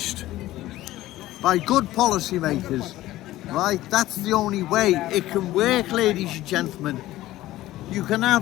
by good policy makers, right? That's the only way it can work, ladies and gentlemen. You can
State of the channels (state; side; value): quieter; right; 15.8 dB